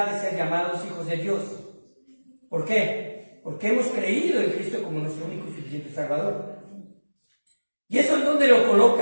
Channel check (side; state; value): both; inverted; correlation -1.00